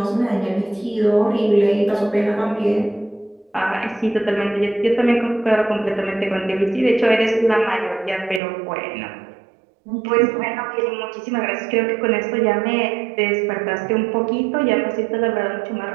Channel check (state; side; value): drops out; left; at 8.4 s